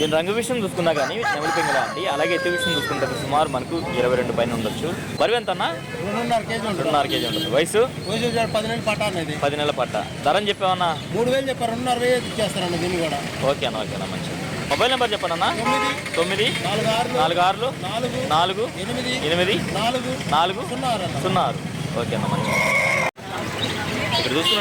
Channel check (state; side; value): identical; both; correlation 1.00